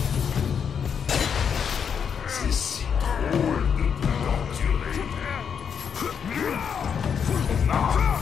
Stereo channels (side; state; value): right; quieter; 7.2 dB